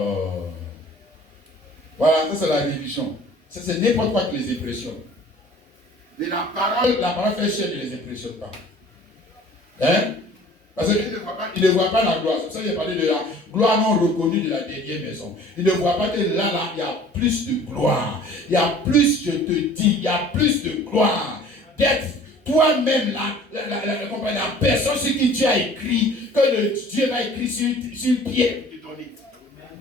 Voilà, ça c'est la religion. Ça, c'est n'importe quoi qui les impressionne. Et la parole fait chaîne ne les impressionne pas. Hein? Parce qu'il ne voit pas la gloire. C'est pour ça qu'il a parlé de la gloire non reconnue de la dernière maison. Il ne voit pas que là, il y a plus de gloire. Il y a plus, je te dis, il y a plus de gloire. D'être toi-même la personne sur qui tu as écrit, que Dieu va écrire sur le pied de ton lit.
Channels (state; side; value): normal; both; correlation 0.49